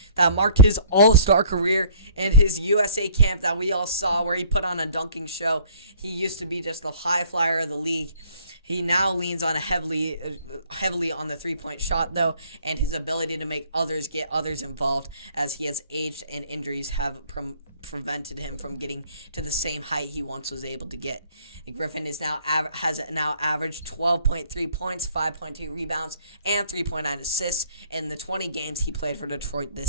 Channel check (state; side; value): inverted; both; correlation -0.55